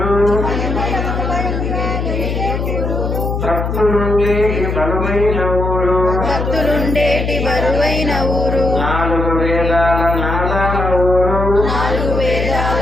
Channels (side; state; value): left; noise; hum, 2 dB below the sound